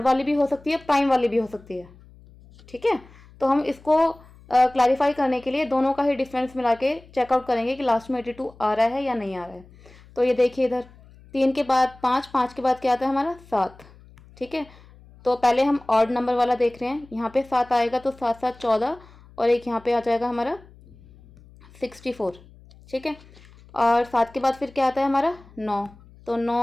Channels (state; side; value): noise; left; hum, 24 dB below the sound